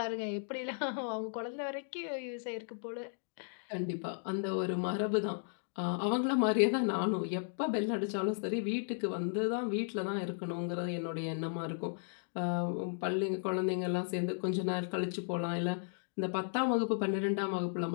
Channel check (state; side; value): silent; right; digital silence